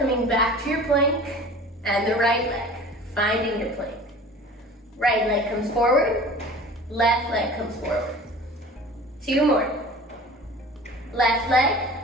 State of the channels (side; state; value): both; normal; correlation 0.41